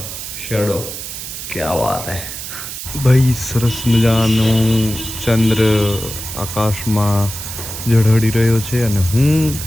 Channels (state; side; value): noise; right; hiss, 8 dB below the sound